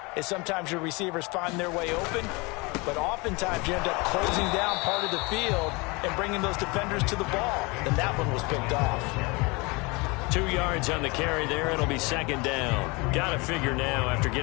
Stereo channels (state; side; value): quieter; right; 26.8 dB